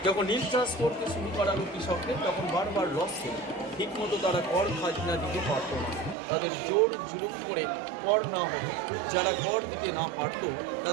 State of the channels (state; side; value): drops out; left; at 6.2 s